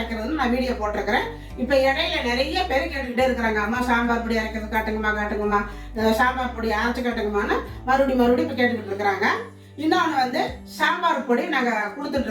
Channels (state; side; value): identical; both; correlation 1.00